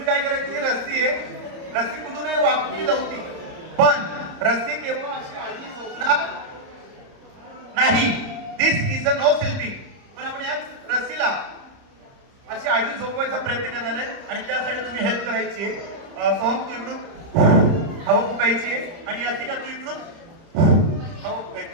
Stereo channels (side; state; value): left; late; 30 ms